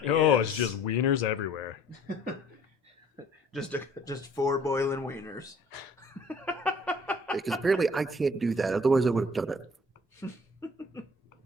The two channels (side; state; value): both; normal; correlation 0.53